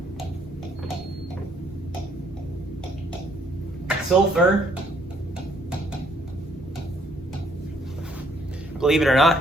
Sulfur, believe it or not,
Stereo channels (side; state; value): both; normal; correlation 0.66